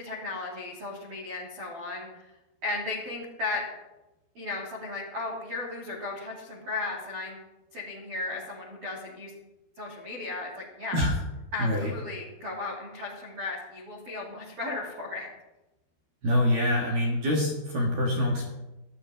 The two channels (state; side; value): late; left; 12 ms